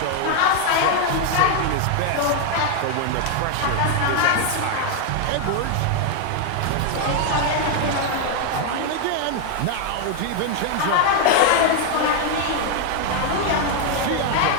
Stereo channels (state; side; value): different; both; correlation 0.01